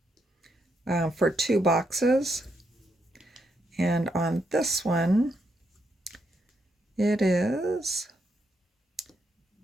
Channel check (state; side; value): normal; both; correlation 0.79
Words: for 2 boxes. And on this one, it is